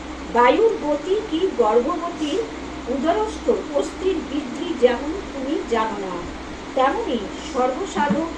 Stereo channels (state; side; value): identical; both; correlation 1.00